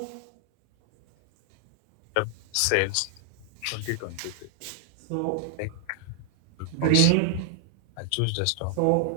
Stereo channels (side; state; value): both; different; correlation 0.00